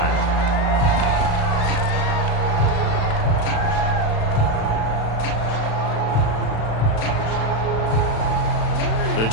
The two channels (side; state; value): right; late; 36 ms